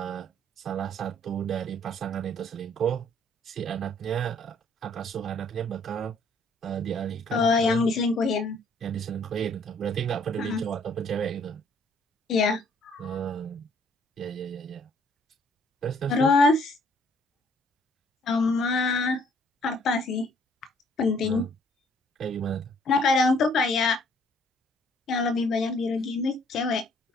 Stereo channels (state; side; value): normal; both; correlation 0.62